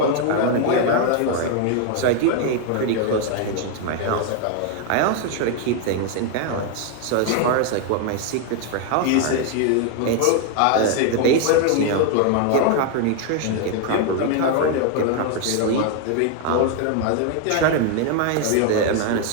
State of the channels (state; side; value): different; both; correlation 0.00